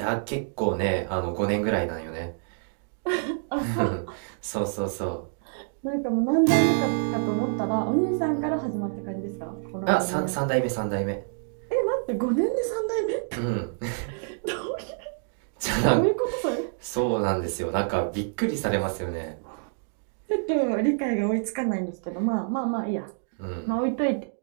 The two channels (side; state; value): left; silent; digital silence